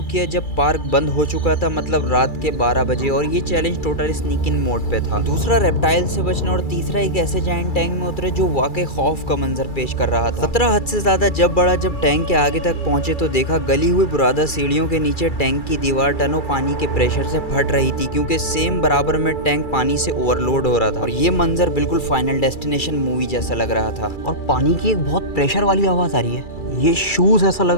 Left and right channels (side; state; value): right; late; 2.3 ms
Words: किया जब पार्क बंद हो चुका था, मतलब रात के 12 बजे, और ये चैलेंज टोटल स्नीक इन मोड पे था। दूसरा रेप्टाइल से बचना, और तीसरा एक ऐसे जायंट टैंक में उतरे जो वाकई खौफ का मंजर पेश कर रहा था। खतरा हद से ज्यादा जब बढ़ा जब टैंक के आगे तक पहुंचे तो देखा गली हुई बुरादा सीढ़ियों के नीचे टैंक की दीवार टनों पानी के प्रेशर से फट रही थी, क्योंकि सेम बराबर में टैंक पानी से ओवरलोड हो रहा था। और ये मंजर बिल्कुल फाइनल डेस्टिनेशन मूवी जैसा लग रहा था। और पानी की एक बहुत प्रेशर वाली आवाज़ आ रही है। ये शूज़ ऐसा लग